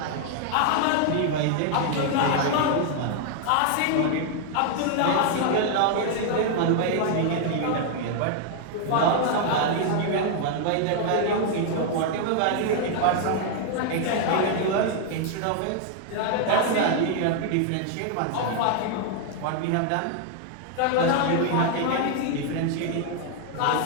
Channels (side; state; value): both; different; correlation 0.00